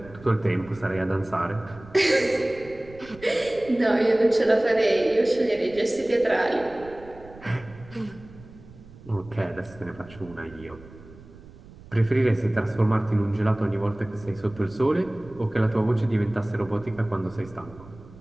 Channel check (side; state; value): right; noise; rumble, 20 dB below the sound